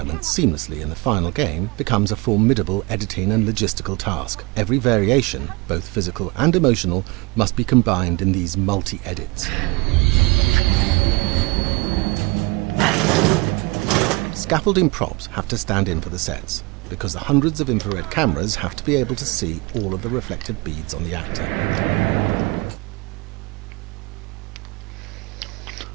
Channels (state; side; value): quieter; left; 25.8 dB